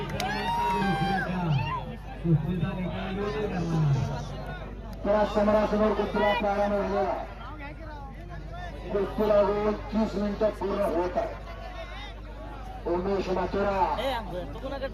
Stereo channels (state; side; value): identical; both; correlation 1.00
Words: त्या समोरासमोर कुस्तीला प्रारंभ झालेला. कुस्तीला 30 मिनिटं पूर्ण होत आहे. उमेश माथुरा